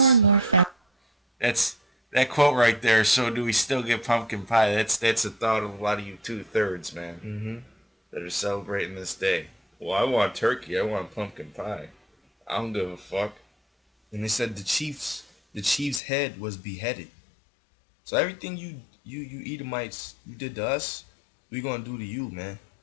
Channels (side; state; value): right; drops out; at 16.0 s